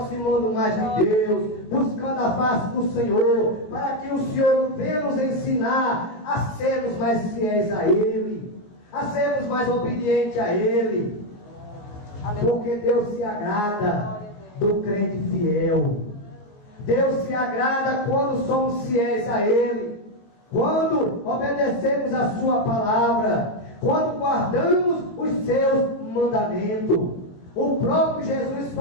mais de Deus, buscando a face do Senhor, para que o Senhor venha nos ensinar a sermos mais fiéis a Ele, a sermos mais obedientes a Ele. Porque Deus se agrada do crente fiel. Deus se agrada quando somos fiéis a Ele, quando obedecemos a Sua palavra, quando guardamos os Seus mandamentos. O próprio Jesus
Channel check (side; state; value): right; late; 19 ms